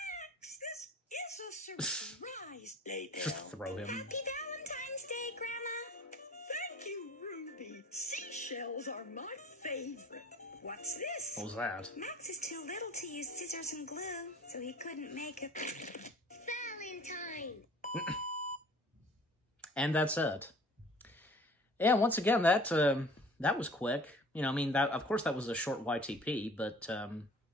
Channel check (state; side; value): normal; both; correlation 0.47